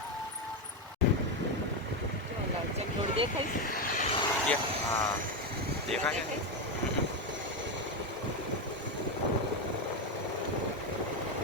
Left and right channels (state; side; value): normal; both; correlation 0.10